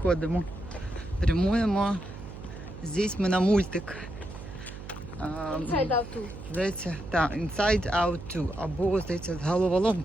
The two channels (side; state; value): right; noise; hum, 12 dB below the sound